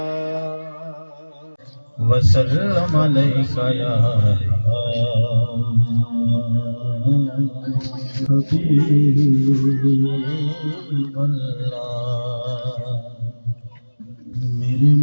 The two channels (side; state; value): both; inverted; correlation -1.00